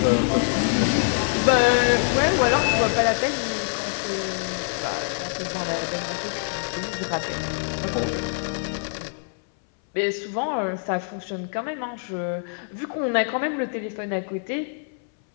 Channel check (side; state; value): right; silent; 62 dB below the other